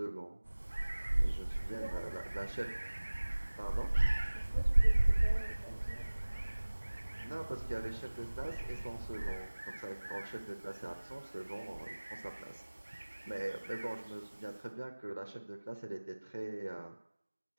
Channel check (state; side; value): inverted; both; correlation -1.00